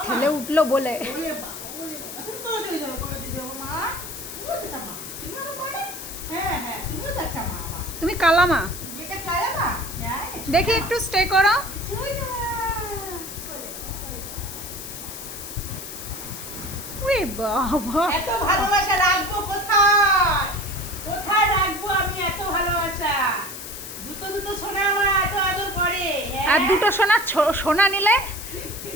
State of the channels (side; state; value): left; noise; hiss, 10 dB below the sound